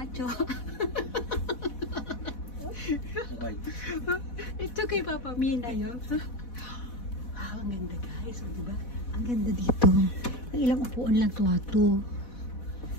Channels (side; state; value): right; late; 4.1 ms